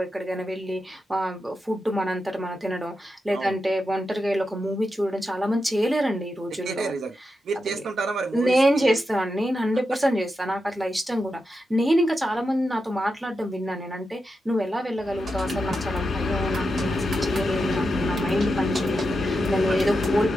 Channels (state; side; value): normal; both; correlation 0.88